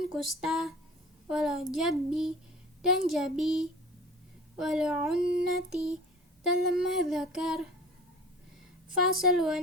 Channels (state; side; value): normal; both; correlation 0.42